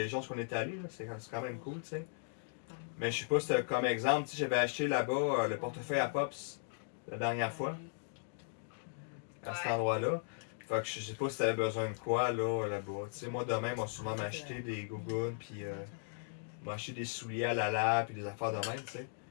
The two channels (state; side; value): silent; right; digital silence